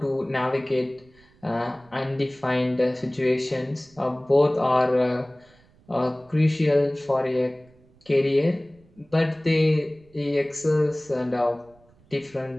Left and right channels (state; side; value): noise; right; rumble, 30 dB below the sound